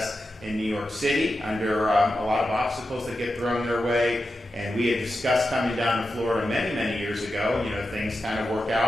in New York City under a lot of obstacles that get thrown their way. And we had discussed coming down to Florida many, many years ago. Things kind of work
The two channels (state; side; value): normal; both; correlation 0.90